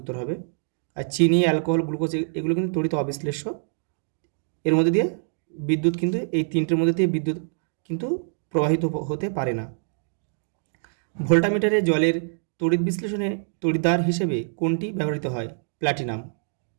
উত্তর হবে। আর চিনি, অ্যালকোহল, গ্লুকোজ এগুলো কিন্তু তড়িৎ অবিশ্লেষ্য। এর মধ্যে দিয়ে বিদ্যুৎ কিন্তু, এই তিনটের মধ্যে দিয়ে বিদ্যুৎ কিন্তু প্রবাহিত হতে পারে না। ভোল্টামিটারে জলের তড়িৎ বিশ্লেষণে তড়িৎদ্বার হিসেবে কোনটি ব্যবহৃত হয়? প্ল্যাটিনাম।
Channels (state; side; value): silent; left; digital silence